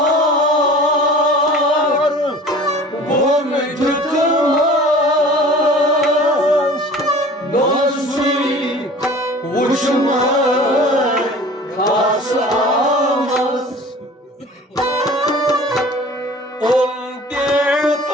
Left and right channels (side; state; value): both; normal; correlation 0.43